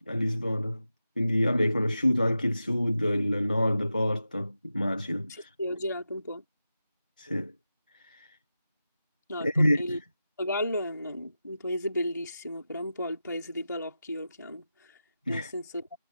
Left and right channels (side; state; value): both; inverted; correlation -0.92